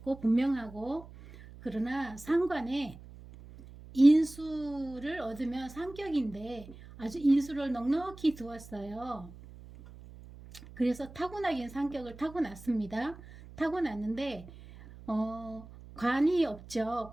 분명하고. 그러나 상관에 인수를 얻으면 상격인데 아주 인수를 넉넉히 두었어요. 그래서 타고나긴 상격을 타고났습니다. 타고났는데 관이 없죠.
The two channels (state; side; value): noise; right; hum, 18 dB below the sound